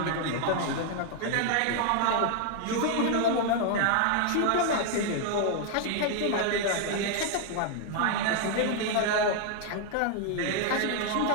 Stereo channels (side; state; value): both; different; correlation 0.00